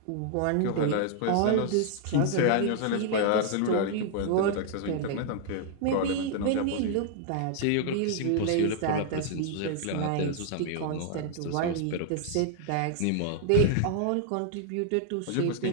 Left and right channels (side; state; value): both; different; correlation -0.01